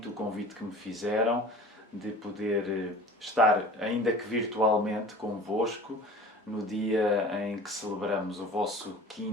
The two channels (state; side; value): normal; both; correlation 0.42